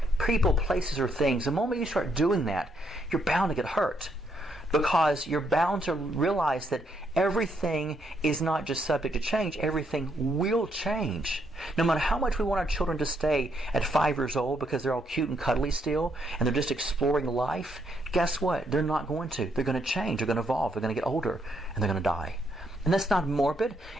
people, places, or things, the moment you start doing that, you're bound to get hurt. Because you're bound to realize that everything is not just subject to change, everything will change. No matter how much we want our children to stay at 5 years old because they're all cute and cuddly still, and they're just exploring life, guess what? They're not going to. They're going to change, they're going to evolve, they're going to get older, and they're going to die. And that's not morbid.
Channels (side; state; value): both; normal; correlation 0.75